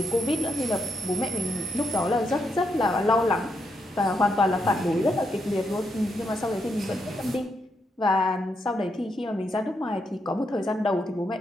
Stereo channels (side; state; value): both; normal; correlation 0.80